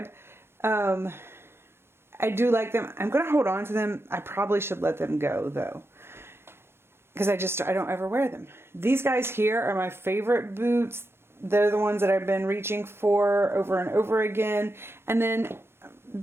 I do like them. I'm going to hold on to them. I probably should let them go though, because I don't ever wear them. These guys here are my favorite boots. They're the ones that I've been reaching for over and over again. And then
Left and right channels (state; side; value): late; left; 0.12 ms